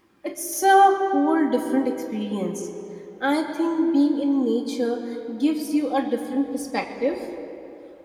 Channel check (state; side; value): identical; both; correlation 1.00